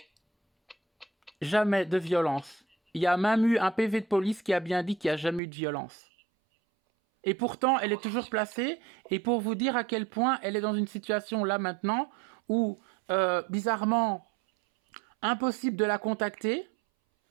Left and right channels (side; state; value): left; drops out; at 5.4 s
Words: Jamais de violence. Il y a même eu un PV de police qui a bien dit qu'il n'y a jamais eu de violence. Et pourtant, elle est toujours placée. Et pour vous dire à quel point elle est dans une situation là maintenant où, bizarrement, impossible de la contacter.